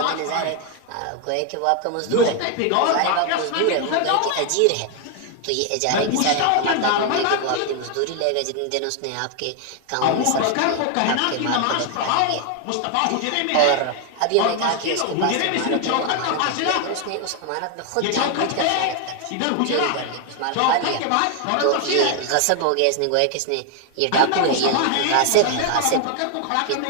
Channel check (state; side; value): different; both; correlation 0.00